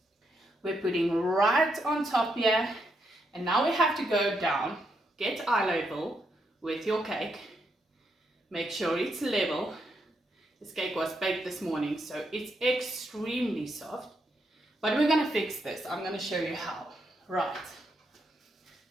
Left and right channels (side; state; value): both; normal; correlation 0.79